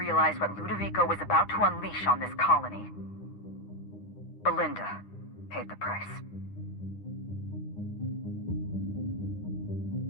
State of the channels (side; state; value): right; late; 9.8 ms